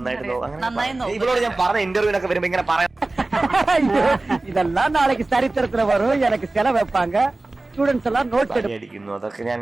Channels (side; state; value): left; quieter; 3.0 dB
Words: ഇവളോട് ഞാൻ പറഞ്ഞ ഇന്റർവ്യൂലൊക്കെ വരുമ്പോ ഇങ്ങനെ പറയാം, இதெல்லாம் நாளைக்கு சரித்திரத்துல வரும், எனக்கு செலவு வைப்பாங்க, സ്റ്റുഡൻസ് എല്ലാം നോട്ട് അടിക്കുന്നു. അതൊക്കെ ഞാൻ